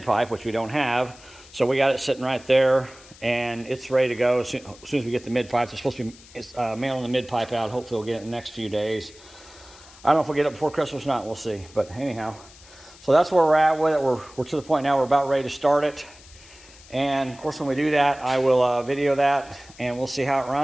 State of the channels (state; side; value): noise; left; hiss, 22 dB below the sound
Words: pipe, which we don't have. So we got it sitting right there, and it's ready to go as soon as we get the mid pipe. They're supposed to be mailing the mid pipe out. Hopefully we'll get it in the next few days. I don't know if we'll get it before Christmas or not. We'll see. But anyhow, so that's where we're at with it. We're to the point now we're about ready to start it. And of course, when we do that, I will video that, and we'll see how it